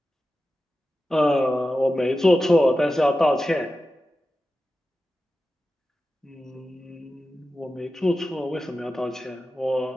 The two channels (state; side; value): normal; both; correlation 0.93